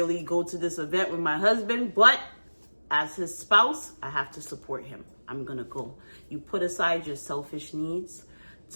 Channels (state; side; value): inverted; both; correlation -1.00